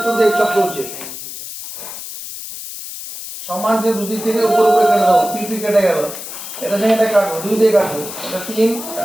দিয়ে চক্র হচ্ছে। সমান যে দুদিক থেকে উপরে উপরে কেটে দাও, পিপি কেটে গেল। এটা থেকে এটা কাটবো, 2 দিয়ে কাটবো, এটা 3,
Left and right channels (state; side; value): noise; left; hiss, 10 dB below the sound